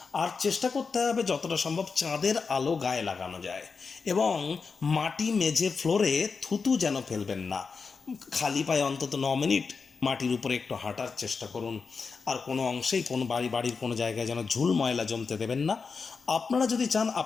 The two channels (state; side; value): quieter; right; 5.0 dB